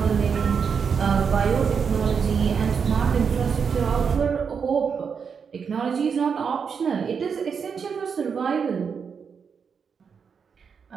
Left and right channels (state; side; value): quieter; left; 6.3 dB